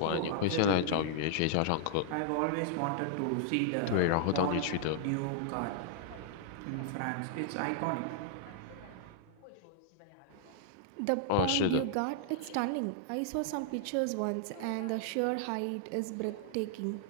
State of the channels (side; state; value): both; different; correlation -0.01